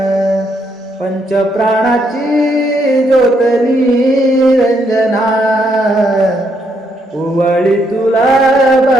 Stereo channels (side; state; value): both; normal; correlation 0.75